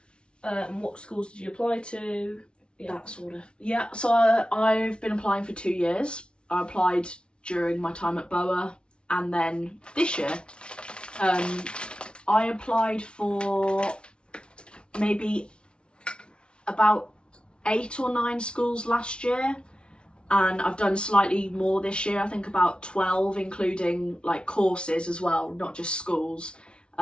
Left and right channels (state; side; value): late; right; 0.057 ms